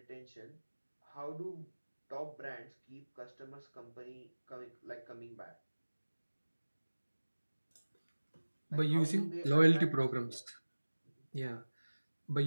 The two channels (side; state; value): both; inverted; correlation -1.00